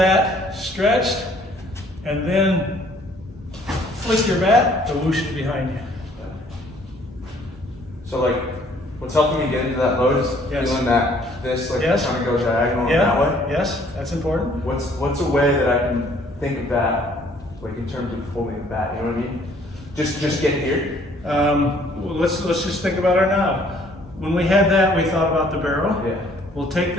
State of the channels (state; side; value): normal; both; correlation 0.60